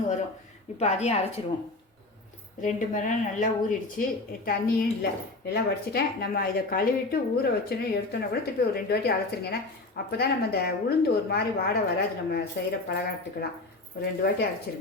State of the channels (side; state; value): right; quieter; 3.1 dB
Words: வரும். இப்போ அதையும் அரைச்சிடுவோம். 2 மணி நேரம் நல்லா ஊறிடுச்சு. தண்ணியும் இல்லை, எல்லாம் வடிச்சிட்டேன். நம்ம இதை கழுவிட்டு ஊற வச்சோன்னு எடுத்தோன்னா கூட திருப்பி ஒரு 2 வாட்டி அரைச்சிருங்க. ஏன்னா அப்போ தான் நம்ம இந்த உளுந்து ஒரு மாதிரி வாடை வராது. நம்ம செய்கிற பலகாரத்துக்கெல்லாம் ஒரு 2 வாட்டி